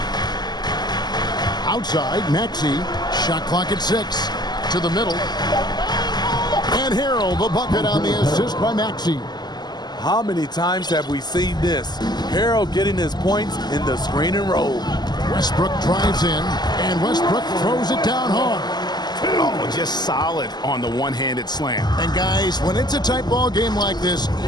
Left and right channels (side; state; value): right; late; 0.20 ms